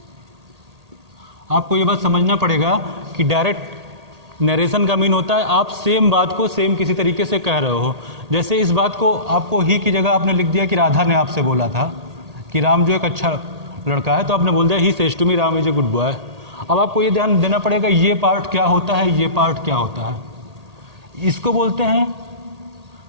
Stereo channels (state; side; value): late; left; 1.8 ms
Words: आपको ये बात समझना पड़ेगा कि डायरेक्ट नरेशन का मीन होता है आप सेम बात को सेम किसी तरीके से कह रहे हो। जैसे इस बात को आपको ही की जगह आपने लिख दिया कि राधा ने आपसे बोला था कि राम जो एक अच्छा लड़का है, तो आपने बोल दिया he says to me Ram is a good boy. अब आपको ये ध्यान देना पड़ेगा ये पार्ट क्या होता है, ये पार्ट क्या होता है। इसको बोलते हैं